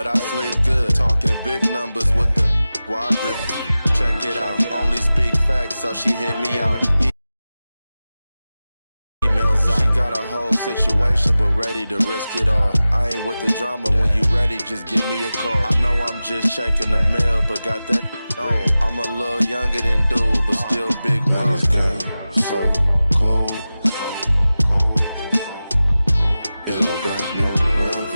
I sleep good. Talking big numbers with the wide grip. Check it out. Only speak facts, so she hit me out. Emails out. She got a whole situation, but ready to risk it all. I ain't with the drama. When you ready, just give me a call. I know I'm just checking the mail, but got that on. I'm a little younger than dude, but still big wings. Game so cold. It don't got no love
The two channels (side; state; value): both; inverted; correlation -0.95